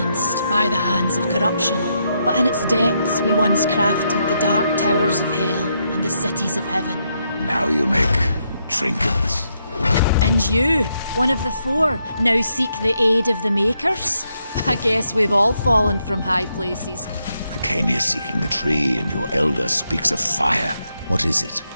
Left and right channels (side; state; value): both; inverted; correlation -0.79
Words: by the hands of corruption. But in its depths we once crafted the dark towers of hell and the cities of heaven. Now you make trinkets. And you, one of the four, now seek the aid of the Makers? I guess we've all fallen from high places. I came here seeking the tree, and your elder speaks of fire. What is it?